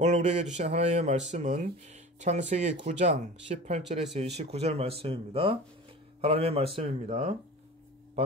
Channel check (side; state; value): both; normal; correlation 0.36